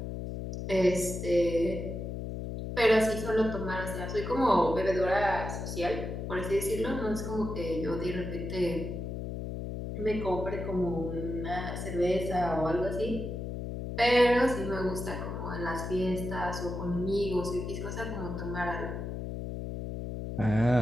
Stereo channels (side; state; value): left; noise; hum, 5 dB below the sound